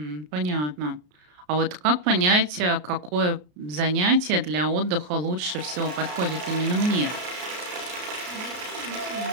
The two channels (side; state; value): left; late; 33 ms